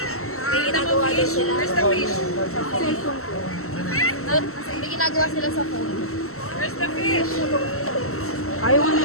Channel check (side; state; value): right; late; 0.63 ms